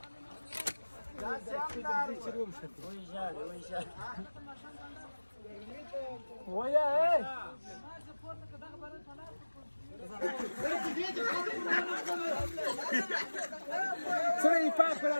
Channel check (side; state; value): both; inverted; correlation -1.00